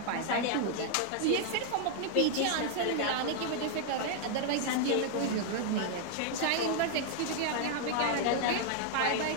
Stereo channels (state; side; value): different; both; correlation 0.00